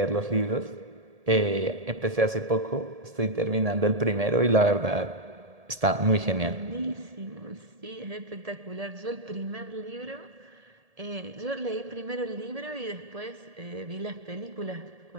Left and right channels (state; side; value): late; left; 1.7 ms